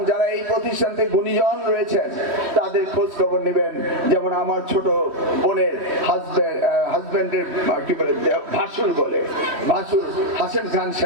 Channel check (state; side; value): late; left; 3.1 ms